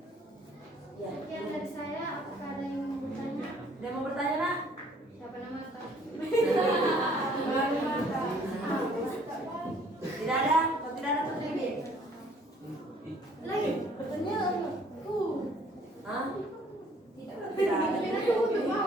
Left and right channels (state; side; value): normal; both; correlation 0.59